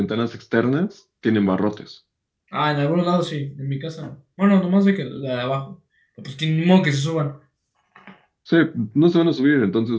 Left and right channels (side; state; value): both; identical; correlation 1.00